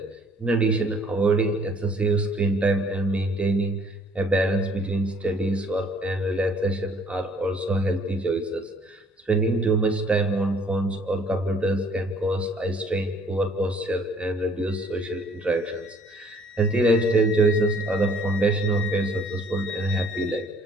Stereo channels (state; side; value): normal; both; correlation 0.58